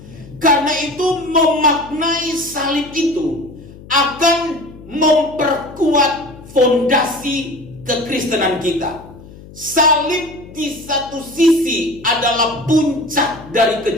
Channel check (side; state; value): left; noise; hum, 19 dB below the sound